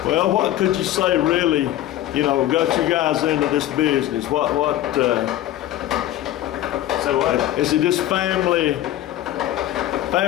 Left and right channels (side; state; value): right; quieter; 13.5 dB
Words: Well, what could you say really, you know, got you guys into this business? So what? Is it just family